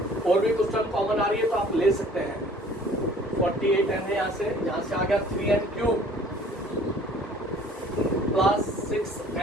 और भी कुछ टर्म कॉमन आ रही है तो आप ले सकते हैं। 48n है, यहाँ से आ गया 3n cube plus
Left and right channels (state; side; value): normal; both; correlation 0.53